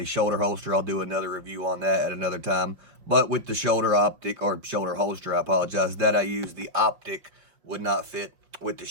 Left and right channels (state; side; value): late; left; 5.6 ms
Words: shoulder holster. I'll do another review on that at another time. But with the shoulder optic, or shoulder holster, I apologize, that I used, the optic would not fit with the